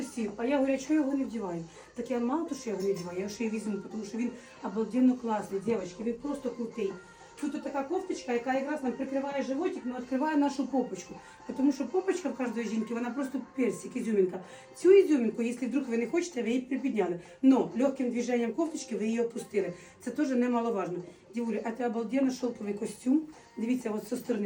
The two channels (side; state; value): both; identical; correlation 1.00